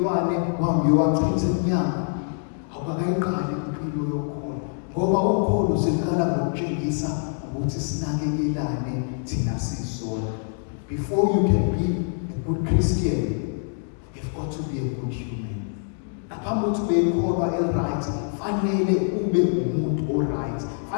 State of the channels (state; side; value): silent; right; digital silence